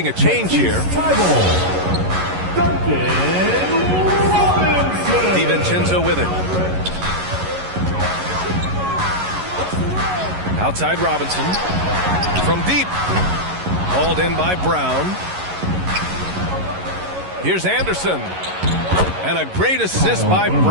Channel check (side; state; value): left; late; 11 ms